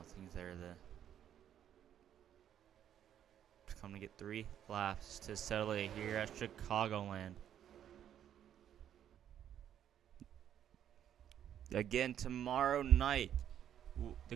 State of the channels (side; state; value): left; quieter; 10.1 dB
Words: there. Just coming to get 3 laps to settle it here at Chicagoland. Again, tomorrow night, the